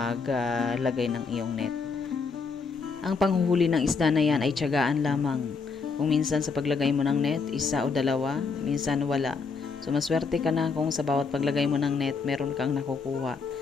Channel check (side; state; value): right; quieter; 4.9 dB